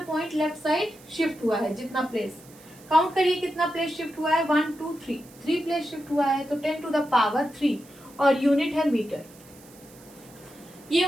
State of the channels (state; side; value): noise; right; hiss, 24 dB below the sound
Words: left side shift हुआ है, जितना प्लेस, काउंट करिए कितना प्लेस शिफ्ट हुआ है, 1 2 3, 3 प्लेस शिफ्ट हुआ है, तो 10 टू द पावर 3 और यूनिट है मीटर। ये